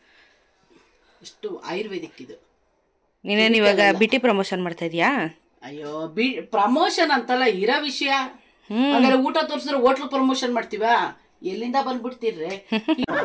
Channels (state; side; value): identical; both; correlation 1.00